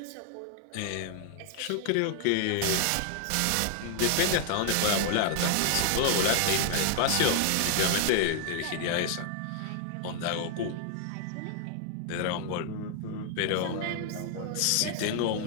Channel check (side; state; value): both; different; correlation 0.00